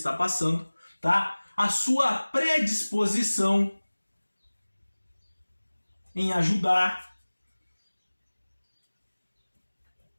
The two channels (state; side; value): inverted; both; correlation -1.00